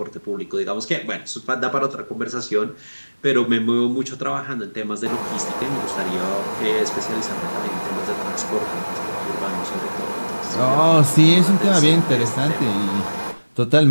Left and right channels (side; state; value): both; inverted; correlation -1.00